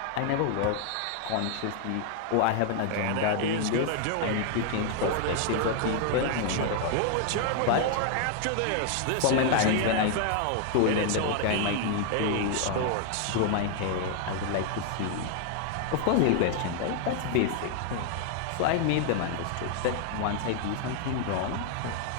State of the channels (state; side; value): different; both; correlation 0.00